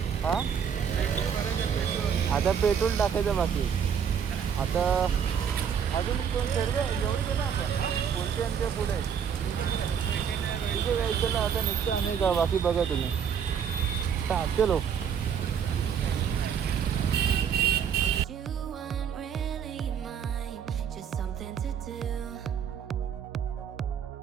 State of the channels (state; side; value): quieter; left; 7.7 dB